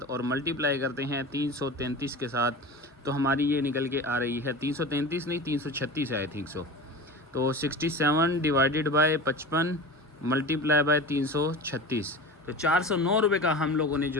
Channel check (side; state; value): both; normal; correlation 0.32